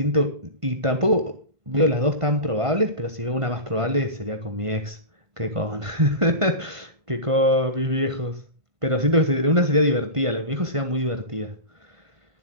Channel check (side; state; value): left; late; 1.5 ms